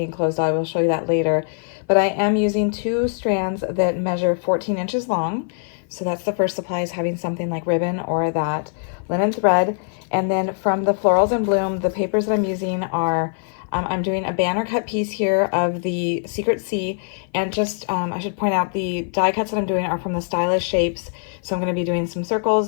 closed. I will show you that later. But I am using 2 strands that measure 14 inches long. So that's the first supply, is having something like ribbon or that linen thread. And then from the Florals in Bloom, the papers that I'm using are, I'm doing a banner cut piece here of the Secret Sea. And just, I should point out, the die cuts that I'm doing are from the Stylish Shapes. So I'm going to be doing some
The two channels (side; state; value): right; silent; 55 dB below the other